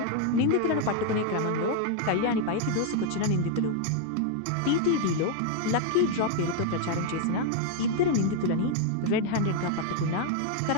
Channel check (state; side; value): different; both; correlation 0.00